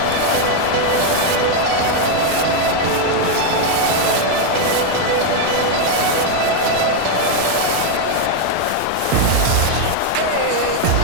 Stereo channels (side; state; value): both; different; correlation 0.01